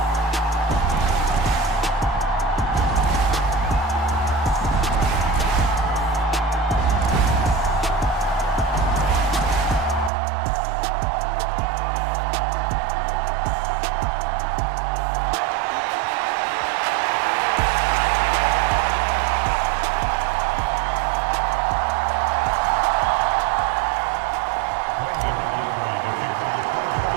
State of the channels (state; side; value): drops out; left; at 10.1 s